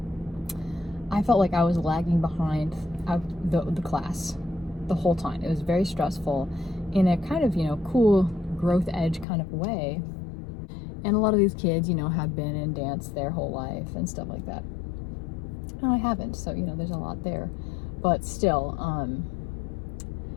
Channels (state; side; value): drops out; right; at 9.2 s